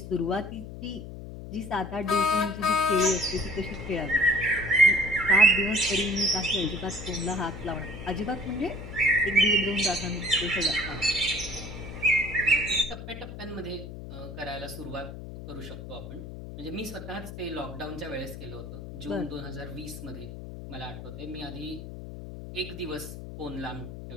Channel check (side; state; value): left; noise; hum, 11 dB below the sound